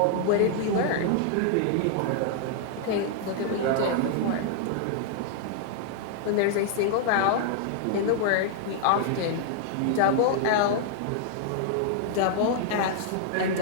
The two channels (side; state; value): both; different; correlation -0.01